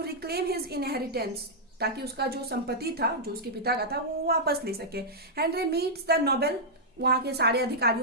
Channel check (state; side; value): normal; both; correlation -0.08